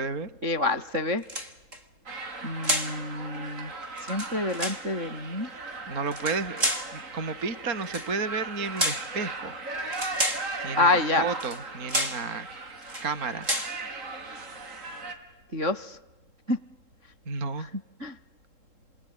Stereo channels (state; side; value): late; left; 3.7 ms